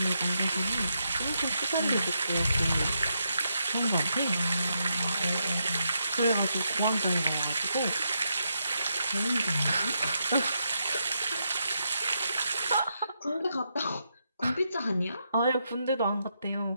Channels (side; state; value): both; inverted; correlation -0.82